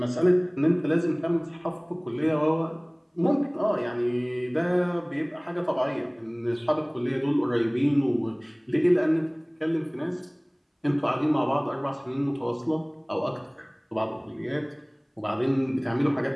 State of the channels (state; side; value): identical; both; correlation 1.00